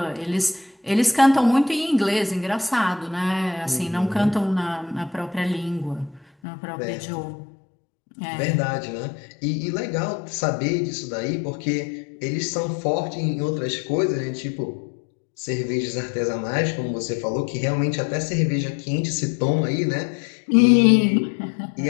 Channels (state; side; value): drops out; right; at 6.2 s